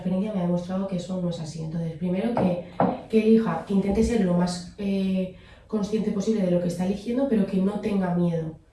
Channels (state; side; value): identical; both; correlation 1.00